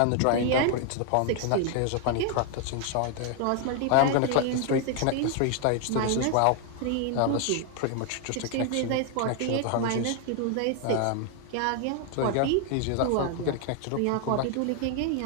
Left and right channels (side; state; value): both; different; correlation 0.00